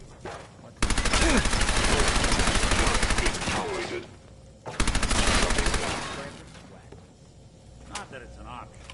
Tolerated. Not that it's an option.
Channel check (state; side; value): identical; both; correlation 1.00